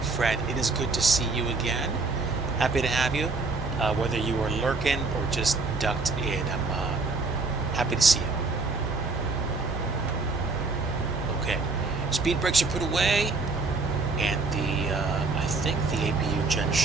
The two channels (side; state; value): left; quieter; 3.8 dB